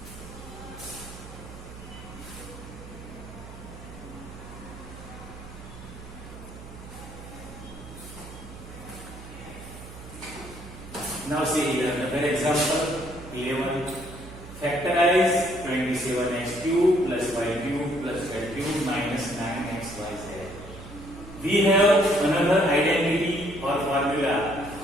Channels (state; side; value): noise; right; hum, 15 dB below the sound